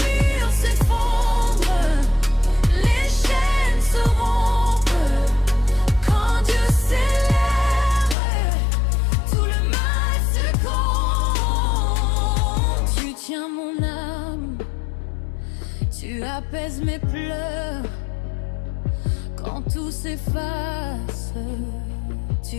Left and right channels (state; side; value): drops out; right; at 8.2 s